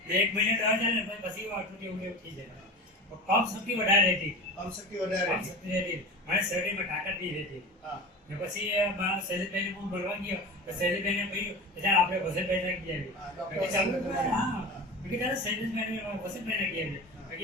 એક મહિને દવા ચાલે ને પછી આટલું એવું થઈ જાય. કમ શક્તિ વધારે રહેતી. કમ શક્તિ વધારે રહેતી. મને શરીરમાં તાકાત નહીં રહેતી. ને પછી શૈલેષભાઈને હું મળવા ગયો તો શૈલેષભાઈને કહ્યું કે ચાલ આપણે વસંતભાઈ ગયા શૈલેષભાઈને વસંતભાઈ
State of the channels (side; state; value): both; normal; correlation 0.31